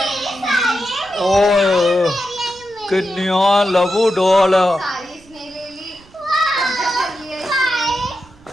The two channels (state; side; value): noise; right; rumble, 26 dB below the sound